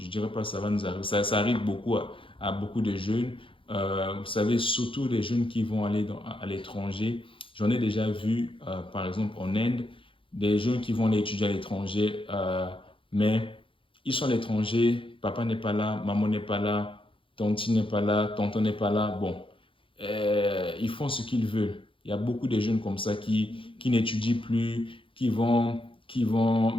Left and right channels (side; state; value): right; late; 0.25 ms